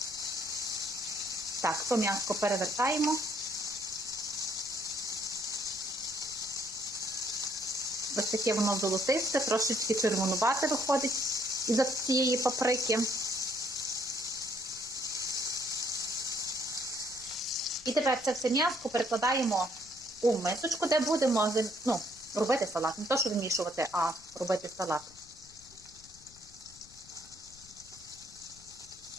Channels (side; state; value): left; noise; rumble, 24 dB below the sound